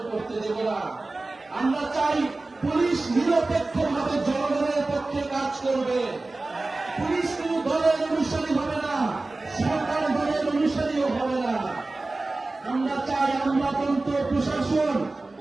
করতে দেব না। আমরা চাই পুলিশ নিরপেক্ষভাবে জনগণের পক্ষে কাজ করবে। পুলিশ কোন দলের অনুসারী হবে না, সরকার দলের অনুসারীও হবে না। আমরা চাই আমলাতন্ত্র প্রশাসন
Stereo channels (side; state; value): left; quieter; 3.2 dB